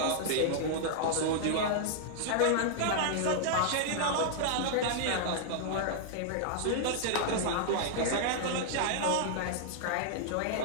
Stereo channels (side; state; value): both; different; correlation -0.01